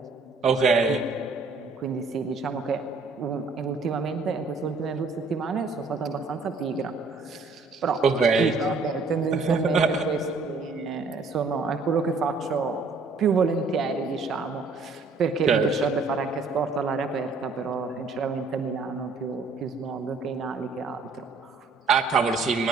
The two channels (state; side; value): quieter; left; 4.0 dB